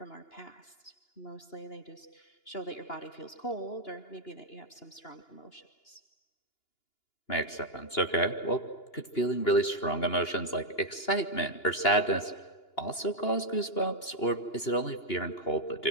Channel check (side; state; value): right; late; 2.9 ms